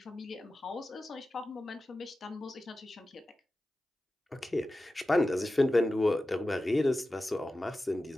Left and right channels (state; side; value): normal; both; correlation 0.94